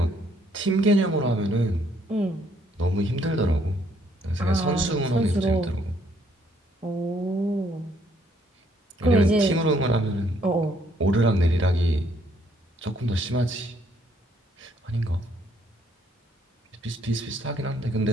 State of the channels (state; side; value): normal; both; correlation 0.67